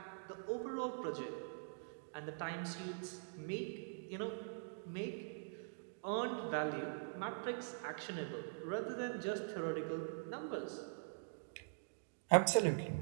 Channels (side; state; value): left; silent; digital silence